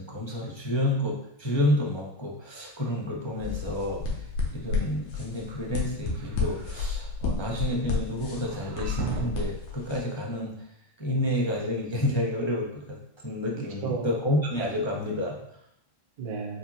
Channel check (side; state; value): right; late; 1.3 ms